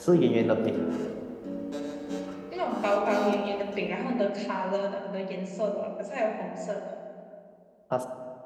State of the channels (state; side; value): identical; both; correlation 1.00